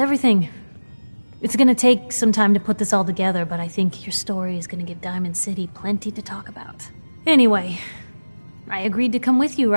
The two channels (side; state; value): both; inverted; correlation -1.00